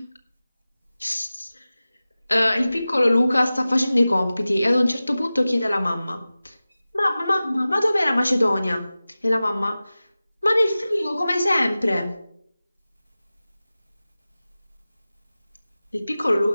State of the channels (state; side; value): inverted; both; correlation -0.96